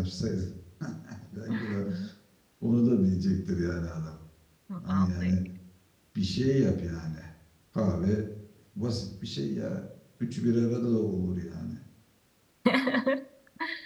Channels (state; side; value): identical; both; correlation 1.00